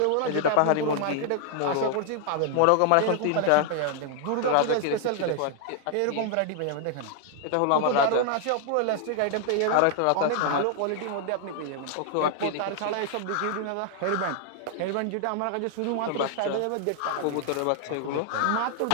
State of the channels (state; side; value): different; both; correlation 0.00